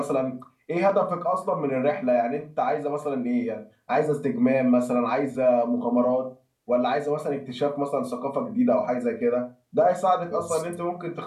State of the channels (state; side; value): identical; both; correlation 1.00